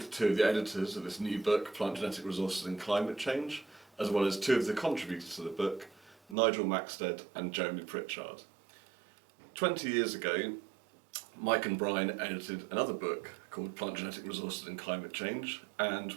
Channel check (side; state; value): left; drops out; at 6.4 s